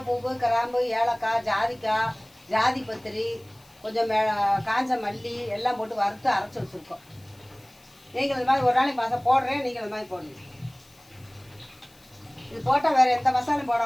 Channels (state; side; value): noise; left; hiss, 28 dB below the sound